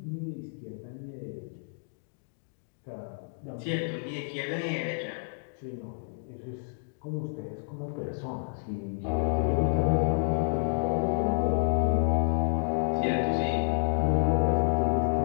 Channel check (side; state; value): right; silent; digital silence